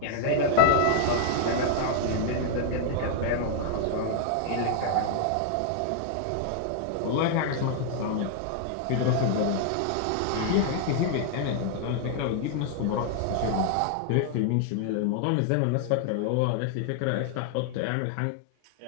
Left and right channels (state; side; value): different; both; correlation 0.00